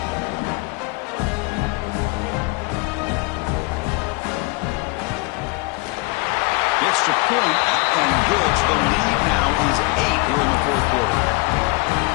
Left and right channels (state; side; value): quieter; right; 26.1 dB